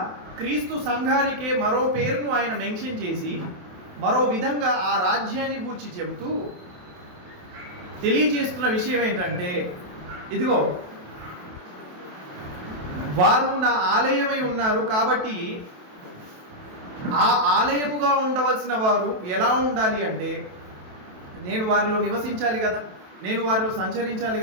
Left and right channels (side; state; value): left; late; 28 ms